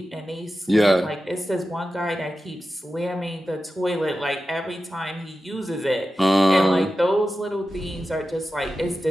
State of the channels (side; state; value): both; normal; correlation 0.93